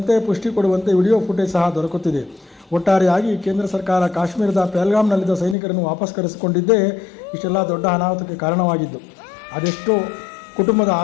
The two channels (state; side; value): drops out; right; at 5.6 s